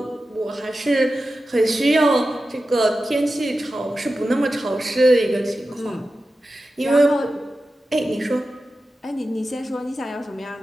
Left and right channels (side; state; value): both; normal; correlation 0.93